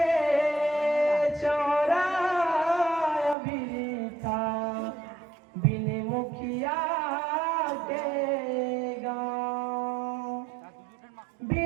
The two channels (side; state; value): left; drops out; at 3.4 s